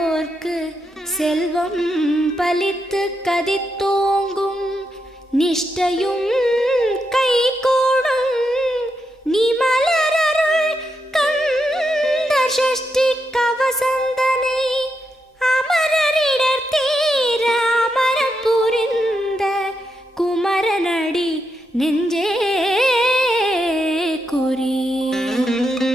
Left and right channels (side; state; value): both; normal; correlation 0.83